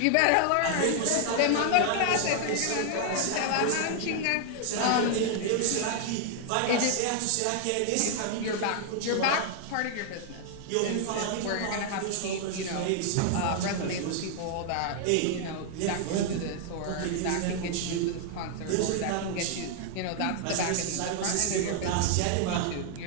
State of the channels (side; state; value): both; different; correlation 0.00